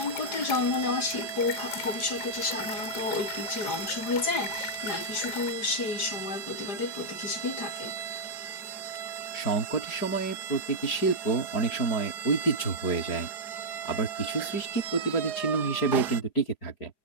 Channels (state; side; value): late; right; 4.9 ms